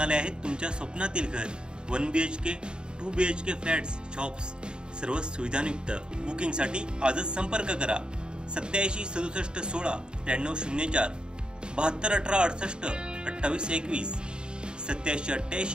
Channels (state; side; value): late; left; 0.049 ms